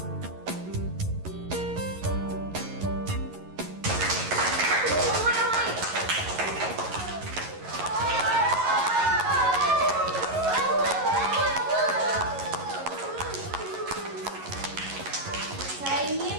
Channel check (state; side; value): late; left; 11 ms